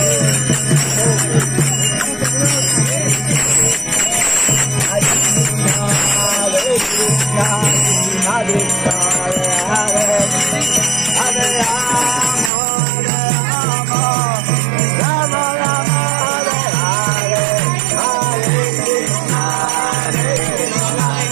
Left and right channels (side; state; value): left; drops out; at 12.5 s